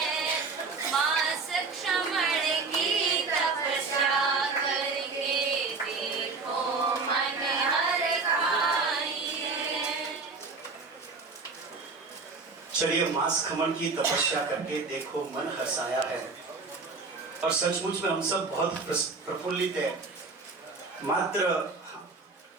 माँ सक्षमण की तपस्या करके देखो मन हर खाई है। चलिए, मांस खमन की तपस्या करके देखो मन हर्षाया है। और सचमुच में हम सब बहुत प्रफुल्लित है।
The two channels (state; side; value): quieter; left; 4.3 dB